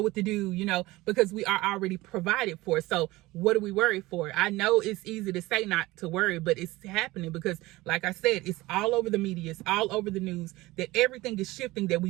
what to do, you know, because we are already provided for. So what do we worry for? I know it's easy to say not to worry, but it's happening because, like I said, it's all over the media. It's all over the news that everything is shifting, that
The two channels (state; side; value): quieter; left; 19.6 dB